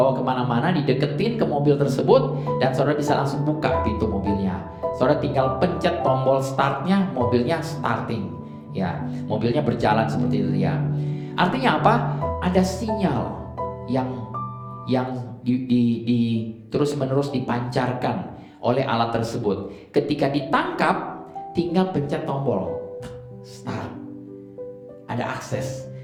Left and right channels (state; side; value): identical; both; correlation 1.00